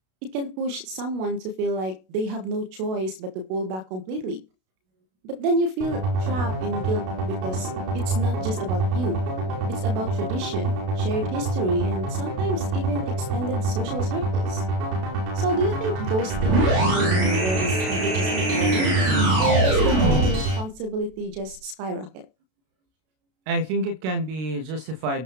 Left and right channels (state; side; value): late; left; 32 ms